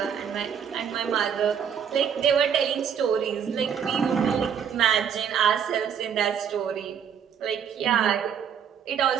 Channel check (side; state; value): left; quieter; 7.9 dB